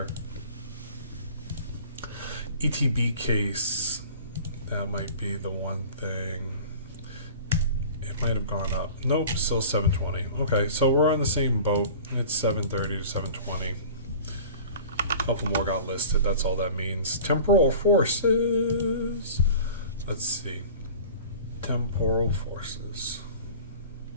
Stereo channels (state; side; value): inverted; both; correlation -0.41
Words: ETB case. That might be the one thing. Might have gone up. Nope, still $720. Okay, so we're on the same boat. It's $730 to $720. A couple more got listed. That's all that means. Temporal Forces. Let's see. Temporal Forces.